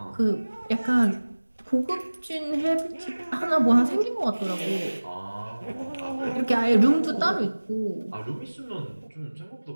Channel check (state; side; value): inverted; both; correlation -1.00